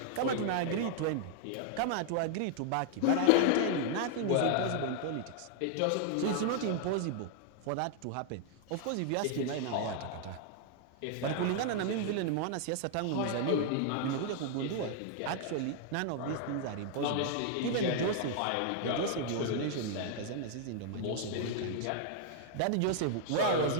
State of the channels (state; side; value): different; both; correlation 0.00